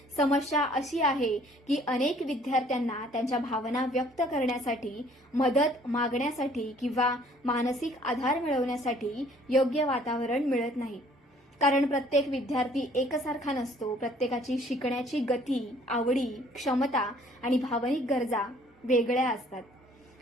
समस्या अशी आहे की अनेक विद्यार्थ्यांना त्यांच्या भावना व्यक्त करण्यासाठी, मदत मागण्यासाठी किंवा मानसिक आधार मिळवण्यासाठी योग्य वातावरण मिळत नाही. कारण प्रत्येक विद्यार्थी एकसारखा नसतो. प्रत्येकाची शिकण्याची गती, आवडी, क्षमता आणि भावनिक गरजा वेगळ्या असतात.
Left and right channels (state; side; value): normal; both; correlation 0.58